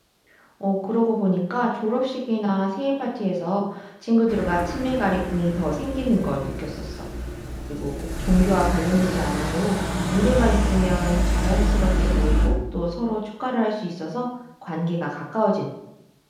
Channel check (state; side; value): identical; both; correlation 1.00